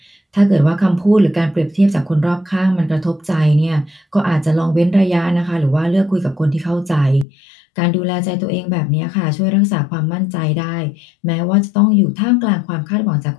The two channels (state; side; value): drops out; right; at 7.2 s